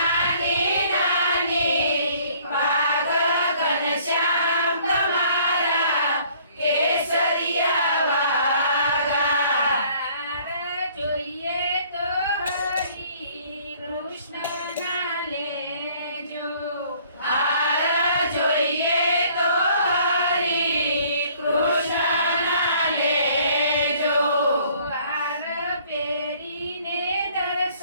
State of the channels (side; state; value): both; inverted; correlation -0.58